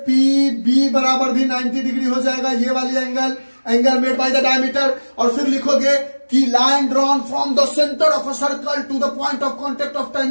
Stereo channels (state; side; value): inverted; both; correlation -1.00